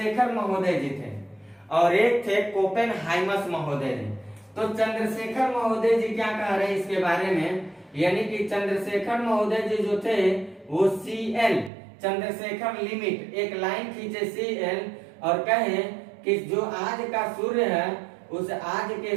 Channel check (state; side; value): drops out; left; at 11.7 s